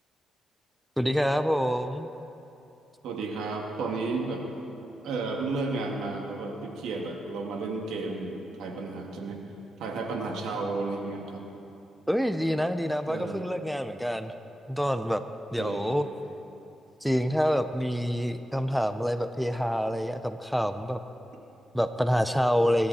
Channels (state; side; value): normal; both; correlation 0.91